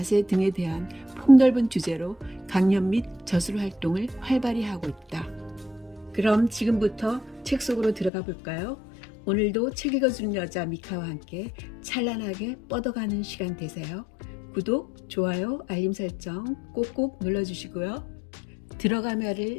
등에 대한 폭넓은 주제로 강연 및 저술 활동을 활발히 하고 있다. 그럼 지금부터 책 속으로 들어가 볼까요? 오늘도 책 읽어주는 여자 미카와 함께 찬란하게 뻗어가는 시간 되세요. 구독, 좋아요, 알림 설정 꼭꼭 눌러주시고요.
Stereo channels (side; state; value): right; drops out; at 8.1 s